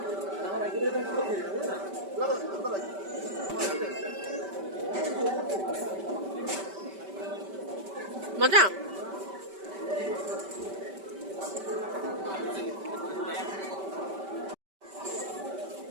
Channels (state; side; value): late; left; 5.2 ms